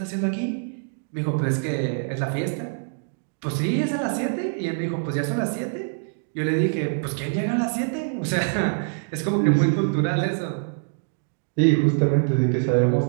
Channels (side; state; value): left; silent; digital silence